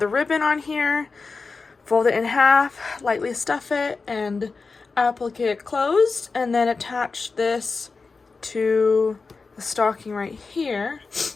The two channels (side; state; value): right; quieter; 4.3 dB